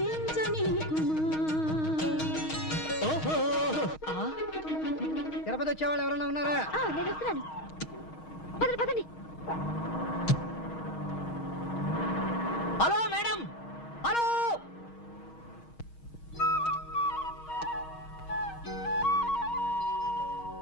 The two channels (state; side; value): late; right; 6.4 ms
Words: ఓహో తిరుపతి వచ్చేవాళ్ళు ఎవరైనా ఉన్నారా? నేను వస్తున్నాను. పదండి పదండి. Hello madam, hello.